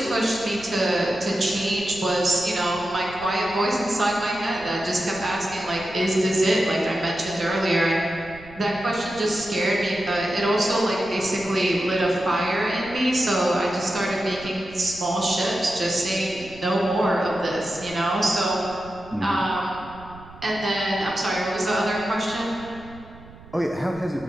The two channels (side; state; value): right; noise; rumble, 19 dB below the sound